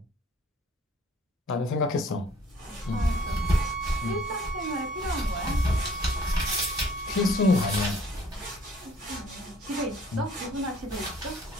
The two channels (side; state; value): both; normal; correlation 0.56